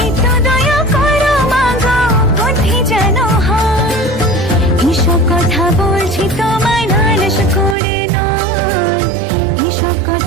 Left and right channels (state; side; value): drops out; left; at 7.8 s